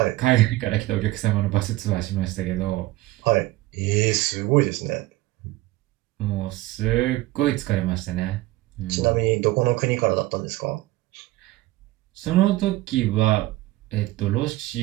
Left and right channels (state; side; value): quieter; left; 17.9 dB